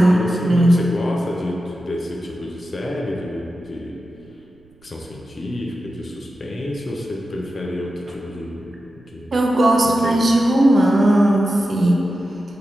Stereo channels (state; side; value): noise; right; rumble, 30 dB below the sound